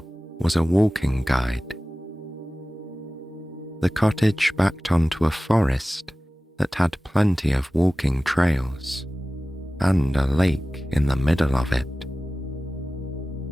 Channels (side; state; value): both; normal; correlation 0.97